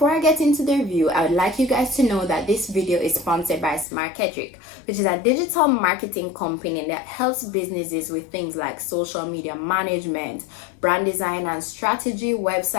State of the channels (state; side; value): drops out; right; at 3.9 s